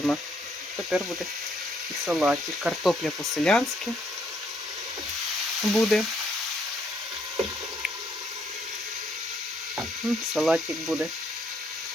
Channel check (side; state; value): both; normal; correlation 0.70